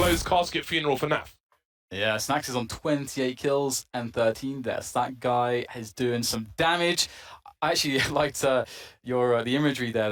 casket funeral for Naf. Yeah, Snacks is on 28 kills and 13 deaths. That guy is doing some damage. I actually liked the imagery there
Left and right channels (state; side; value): identical; both; correlation 1.00